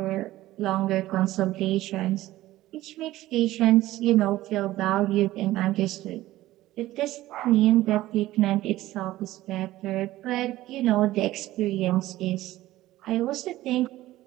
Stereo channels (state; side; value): quieter; left; 16.0 dB